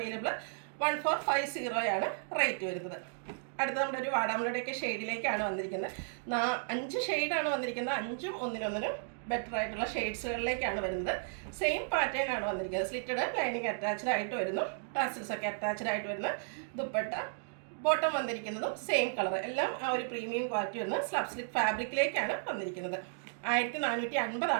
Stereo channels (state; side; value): silent; left; digital silence